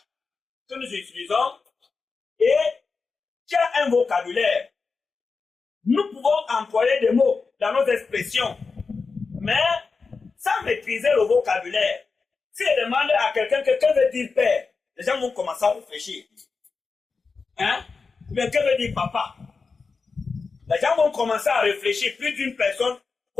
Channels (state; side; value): quieter; right; 4.6 dB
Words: que nous utilisons et qui a un vocabulaire. Nous pouvons employer des mots dans nos expressions, mais sans maîtriser le vocabulaire. Si je demande à quelqu'un que veut dire père, les gens vont commencer à réfléchir. Hein? Mais que veut dire papa? Les gens vont commencer à réfléchir. Plus d'une personne